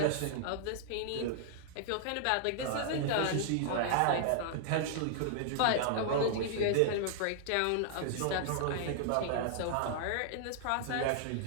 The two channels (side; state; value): both; different; correlation -0.01